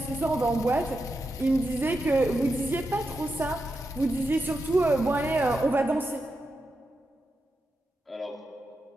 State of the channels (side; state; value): both; normal; correlation 0.87